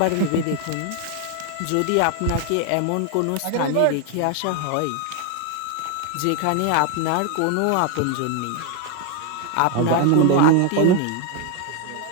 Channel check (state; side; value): different; both; correlation 0.01